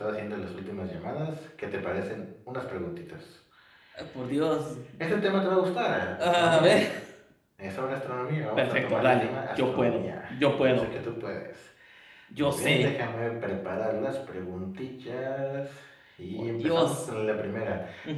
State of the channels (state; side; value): identical; both; correlation 1.00